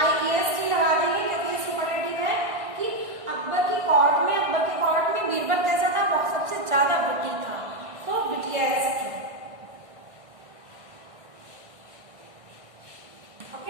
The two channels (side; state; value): left; late; 1.6 ms